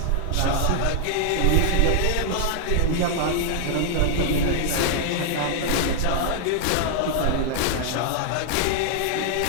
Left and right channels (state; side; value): different; both; correlation 0.00